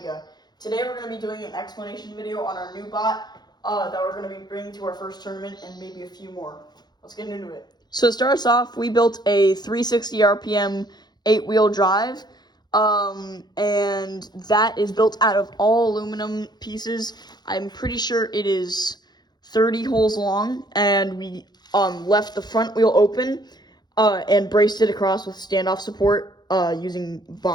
Today we're going to be doing an explanation video on our new bot that we're going to be bringing to our first tournament and maybe a few more. Let's get into it. So to start us off, we built a 360 RPM 8-wheel drive, and that is built out of all aluminum pieces. I'm pretty sure it is 30 holes long, and we left the front wheel open and braced it across with standoff support using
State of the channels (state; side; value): late; right; 0.20 ms